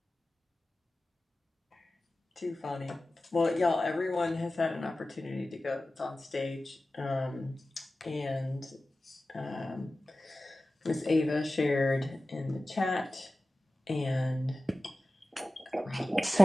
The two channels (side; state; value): both; normal; correlation 0.96